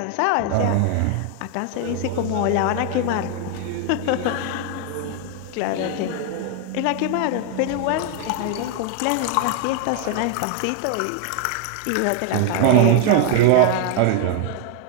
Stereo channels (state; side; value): different; both; correlation 0.00